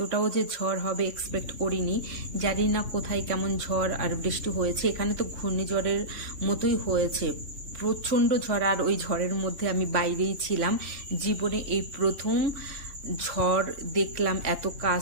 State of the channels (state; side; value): late; left; 3.5 ms